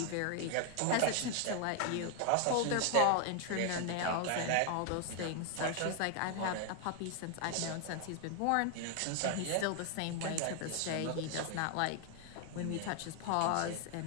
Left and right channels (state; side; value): different; both; correlation 0.00